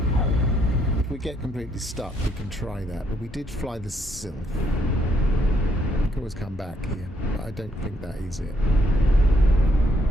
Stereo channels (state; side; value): normal; both; correlation 0.72